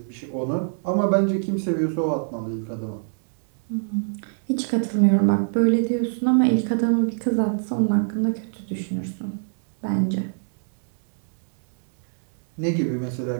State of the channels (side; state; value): left; silent; digital silence